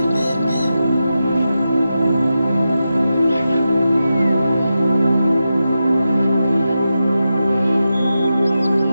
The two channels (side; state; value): both; inverted; correlation -0.90